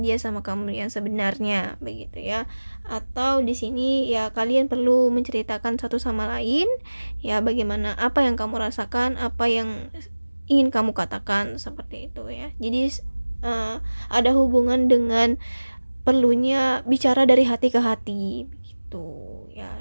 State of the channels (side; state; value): both; inverted; correlation -1.00